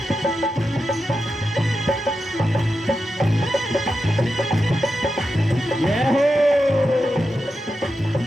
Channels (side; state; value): both; normal; correlation 0.89